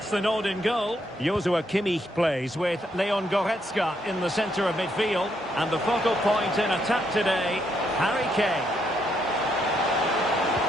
the nod in goal. Joshua Kimmich plays with Leon Goretzka in the centre of midfield. And the focal point in attack today, Harry Kane.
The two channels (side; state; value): both; normal; correlation 0.76